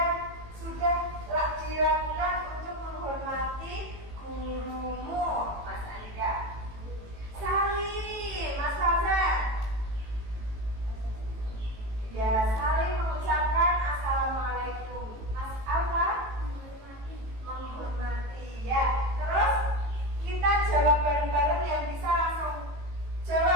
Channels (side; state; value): left; late; 18 ms